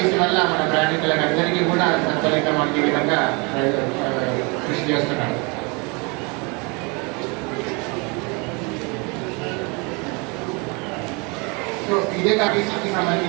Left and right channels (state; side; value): quieter; left; 30.1 dB